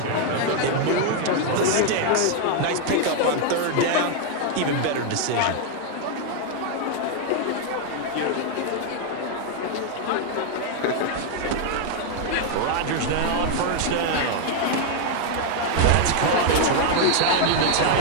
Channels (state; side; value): different; both; correlation 0.00